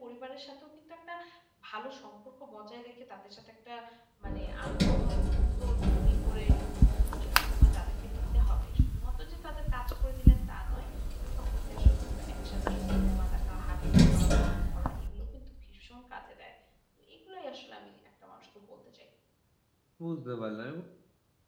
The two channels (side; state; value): both; identical; correlation 1.00